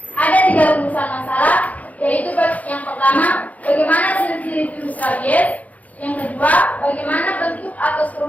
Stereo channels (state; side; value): late; right; 0.073 ms